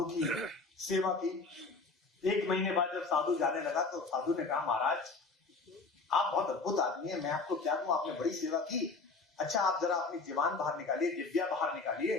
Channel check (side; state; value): right; quieter; 4.0 dB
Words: की सेवा की। 1 महीने बाद जब साधु जाने लगा तो साधु ने कहा महाराज आप बहुत अद्भुत आदमी है, मैं आपको क्या कहूं, आपने बड़ी सेवा की। अच्छा आप जरा अपनी जीवान बाहर निकालिए, जिब्या बाहर निकालिए।